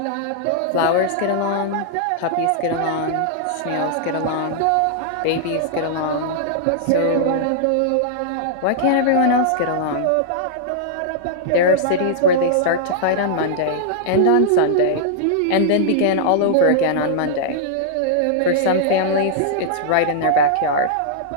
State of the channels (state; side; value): different; both; correlation -0.01